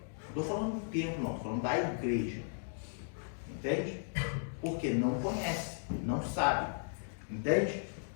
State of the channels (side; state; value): right; silent; digital silence